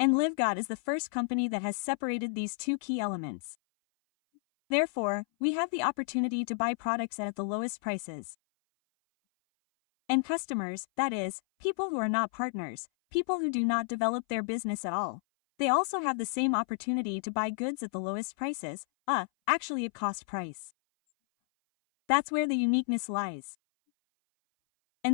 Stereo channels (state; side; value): silent; right; 57 dB below the other